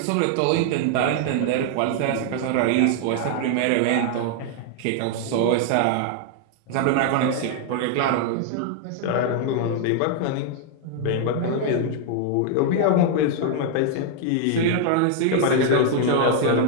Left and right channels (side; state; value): both; different; correlation 0.00